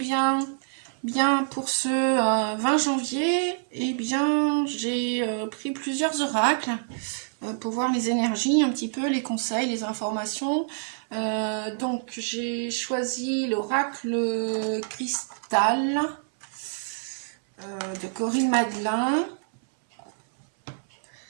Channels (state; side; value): silent; left; 60 dB below the other